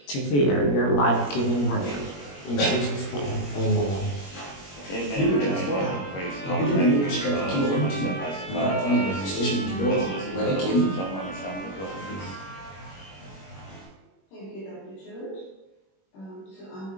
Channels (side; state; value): right; late; 21 ms